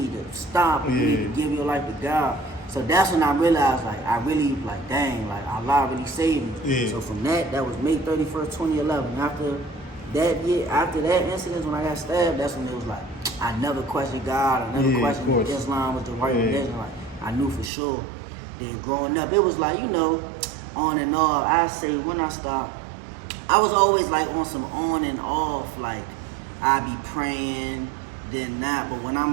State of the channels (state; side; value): drops out; left; at 17.7 s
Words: to stop and you need to give your life to God. So that's when I realized, like, I really, like, dang, like, Allah really saved me. So from that was May 31st, 2011. After that year, after that incident, when I got stabbed, that's when it was like, I never questioned God. I never questioned if Islam was the right religion. Like, I knew for sure. Then growing up, it was like, on and off. I say when I stopped, I was always like on some on and off. Like, I be praying, then not. But when